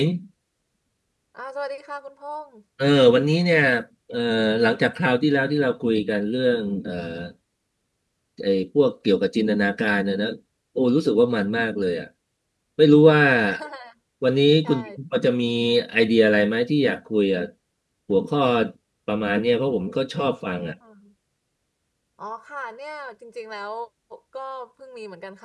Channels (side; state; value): both; identical; correlation 1.00